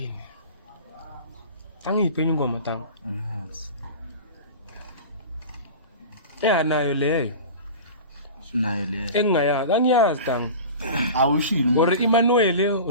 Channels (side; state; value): both; inverted; correlation -0.34